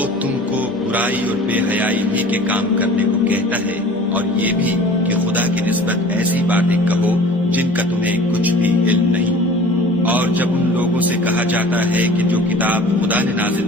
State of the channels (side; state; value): both; normal; correlation 0.44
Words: تم کو برائی اور بے حیائی ہی کے کام کرنے کو کہتا ہے، اور یہ بھی کہ خدا کی نسبت ایسی باتیں کہو جن کا تمہیں کچھ بھی علم نہیں۔ اور جب ان لوگوں سے کہا جاتا ہے کہ جو کتاب خدا نے